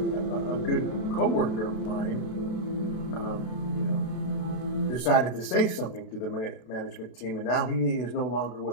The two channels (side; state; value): right; late; 32 ms